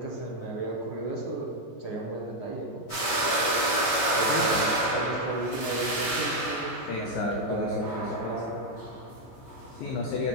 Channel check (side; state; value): right; late; 14 ms